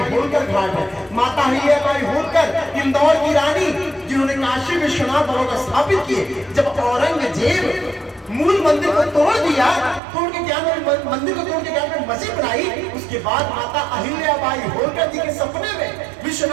होलकर घाट है। माता अहिल्याबाई होलकर इंदौर की रानी, जिन्होंने काशी विश्वनाथ भगवान स्थापित किए। जब औरंगजेब मूल मंदिर को तोड़ दिया, तोड़ के क्या मंदिर को तोड़ के क्या मस्जिद बनाई। उसके बाद माता अहिल्याबाई होलकर जी के सपने में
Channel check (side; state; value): left; drops out; at 10.0 s